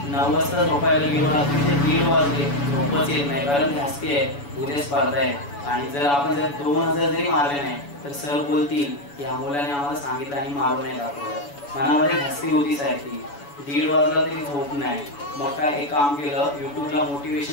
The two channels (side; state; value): right; late; 7.0 ms